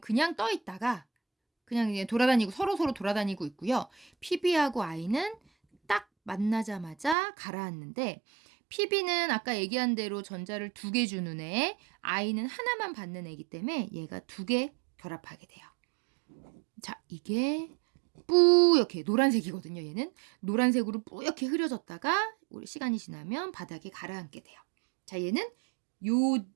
떠 있다가 그냥 돌아다니고 서로 돌아다니고 있고요. PB하고 I는 딱 만나자마자 가라앉는데 PB는 아까 얘기한 대로 전자를 두 개 주는 애, I는 하나만 받는 애이기 때문에 얘가 두 개 결합하게 돼요. 자, 이게 뿌옇게 노란색이거든요. 얘는 노란색으로 뿌옇게 흐려졌다가 시간이 지나면 바닥에 가라앉게 돼요. 자, 얘는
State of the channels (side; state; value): left; drops out; at 7.2 s